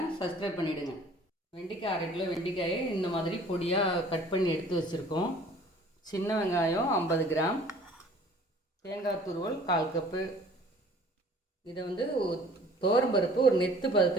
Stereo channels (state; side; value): normal; both; correlation 0.51